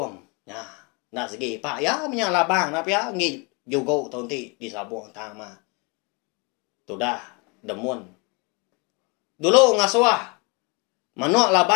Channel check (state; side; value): quieter; right; 30.9 dB